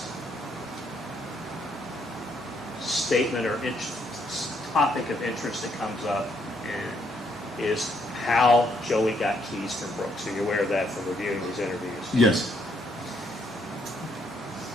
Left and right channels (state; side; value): normal; both; correlation 0.72